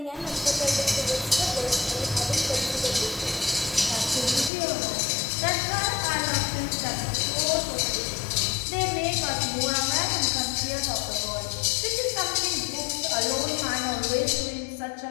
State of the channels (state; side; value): drops out; right; at 4.5 s